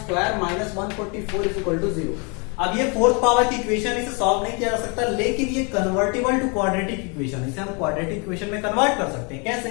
minus 144 is equal to 0। अब ये फोर्थ पावर की इक्वेशन, इसे सॉल्व नहीं किया जा सकता, लेकिन ये कन्वर्टेबल टू क्वाड्रेटिक इक्वेशन है, इसे हम क्वाड्रेटिक इक्वेशन में कन्वर्ट कर सकते हैं। कैसे,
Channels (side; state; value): right; quieter; 33.6 dB